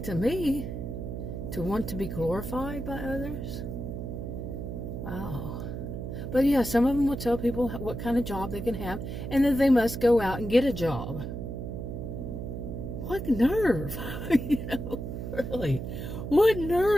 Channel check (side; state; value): right; noise; hum, 6 dB below the sound